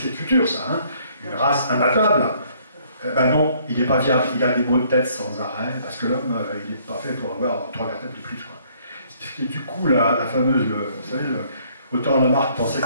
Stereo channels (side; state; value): both; inverted; correlation -0.63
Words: futur, ça, hein, une race imbattable. Ben non, il n'est pas viable, il a des maux de tête sans arrêt, parce que l'homme, il n'est pas fait pour avoir 3 vertèbres de plus. Quoi. Et du coup, la fameuse, vous savez, autant Lamarck pensait